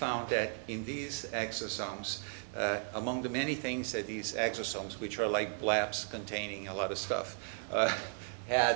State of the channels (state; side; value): silent; left; 54 dB below the other